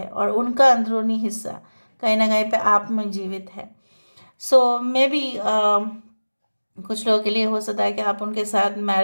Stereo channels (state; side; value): inverted; both; correlation -1.00